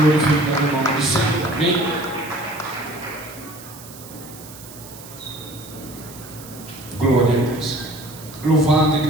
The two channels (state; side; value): noise; right; hiss, 17 dB below the sound